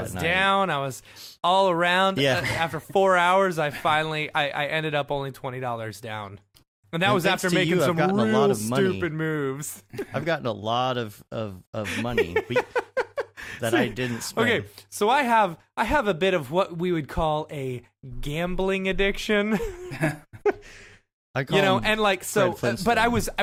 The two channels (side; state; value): both; identical; correlation 1.00